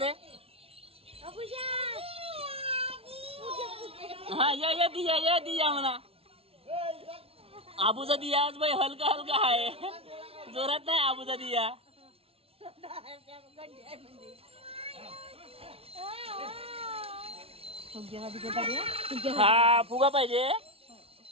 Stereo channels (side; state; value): left; late; 0.28 ms